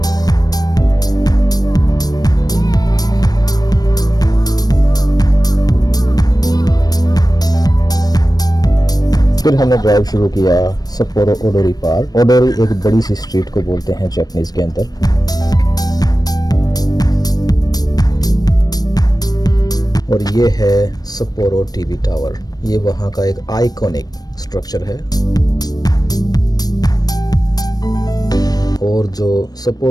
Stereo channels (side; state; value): right; late; 0.19 ms